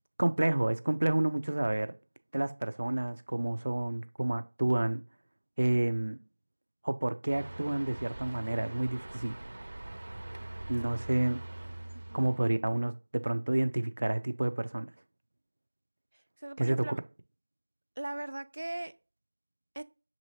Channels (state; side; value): inverted; both; correlation -1.00